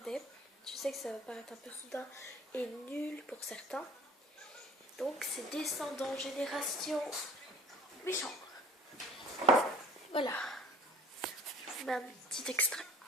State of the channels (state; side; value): normal; both; correlation 0.50